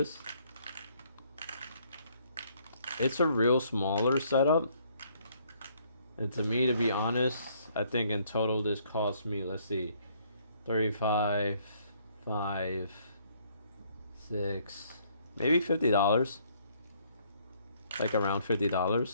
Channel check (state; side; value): inverted; both; correlation -0.66